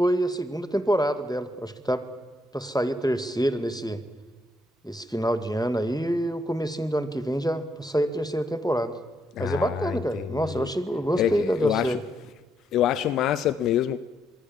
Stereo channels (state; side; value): normal; both; correlation 0.76